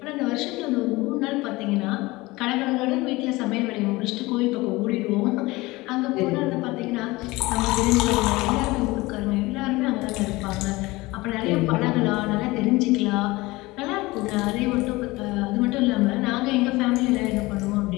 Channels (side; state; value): right; quieter; 21.2 dB